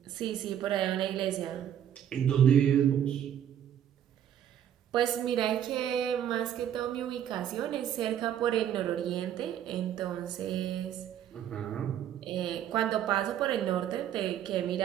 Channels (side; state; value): left; quieter; 10.1 dB